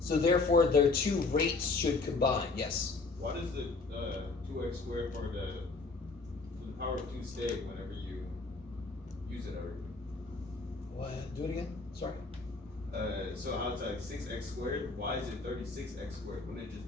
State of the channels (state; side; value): quieter; right; 3.8 dB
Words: therefore, their two rates should combine. Yes? Why does the 2x squared for the power of 2 stay whenever you use it already? What? Do it again? Sorry. So outside 6x squared, why is it 36x squared? Wouldn't it just